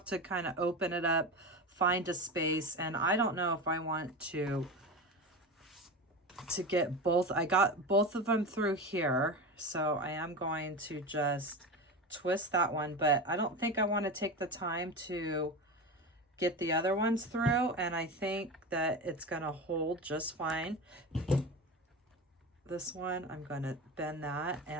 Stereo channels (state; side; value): normal; both; correlation 0.25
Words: to kind of open it up, find a space, and I don't know if I want to get both. I got both of them through here, so I am going to just twist that one, but I don't think I want to take the time to get the other ones through, and I think that it's going to hold just fine. This one, I'm going to bend that,